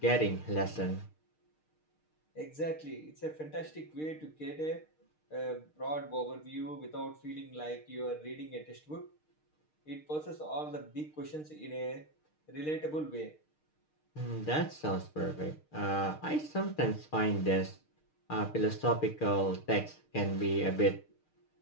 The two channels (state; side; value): late; right; 6.5 ms